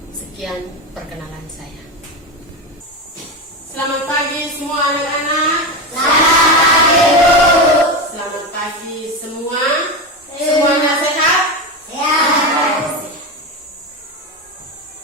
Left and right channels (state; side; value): normal; both; correlation 0.17